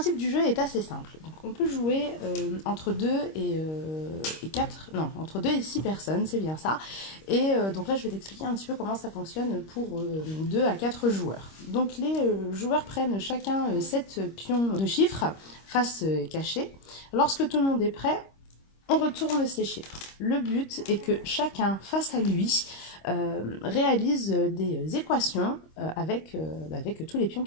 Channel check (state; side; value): late; right; 26 ms